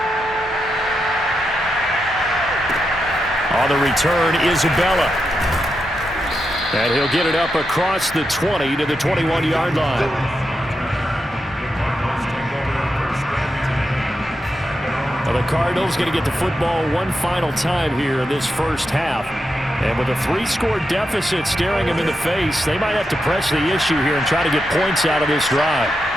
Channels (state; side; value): normal; both; correlation 0.86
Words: On the return, Isabella. And he'll get it up across the 20 to the 21-yard line. Well, the Cardinals going to get the football one final time here in this first half. And with a 3-score deficit staring them in the face, they might have to press the issue here and try to get points out of this drive.